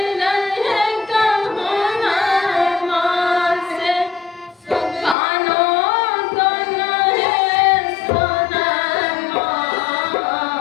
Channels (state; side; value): drops out; right; at 5.2 s